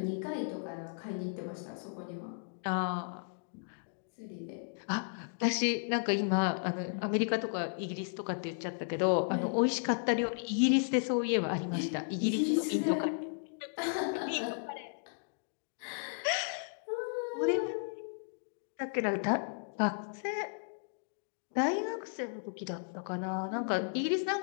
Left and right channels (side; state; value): right; silent; digital silence